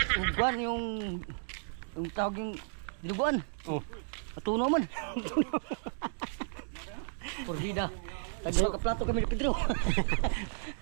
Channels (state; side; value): silent; left; digital silence